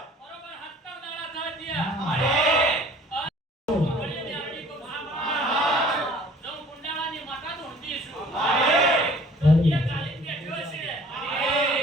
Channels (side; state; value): both; normal; correlation 0.52